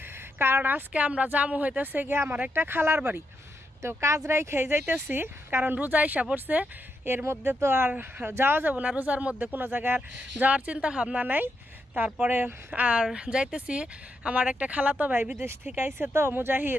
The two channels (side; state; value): both; normal; correlation 0.83